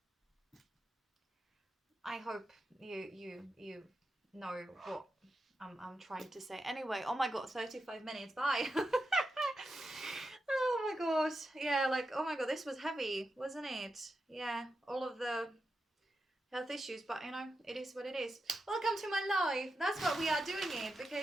I hope you know what I'm trying to say. Anyway, oh my god, 35 minutes. Bye. Oh my god. Yeah, like, oh my god, this was heavy, wasn't it? Yeah, all of the health issues, but you know, it is what it is. Welcome to my life. That's what we are doing it,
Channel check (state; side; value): normal; both; correlation 0.88